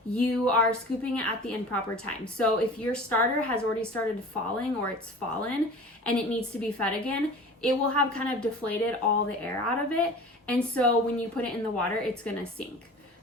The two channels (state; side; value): normal; both; correlation 0.39